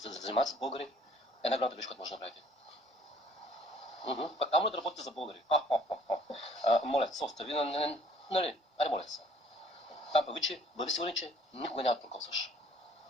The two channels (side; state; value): both; normal; correlation 0.57